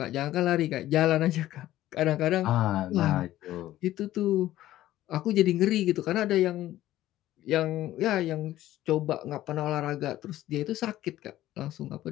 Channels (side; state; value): right; quieter; 14.4 dB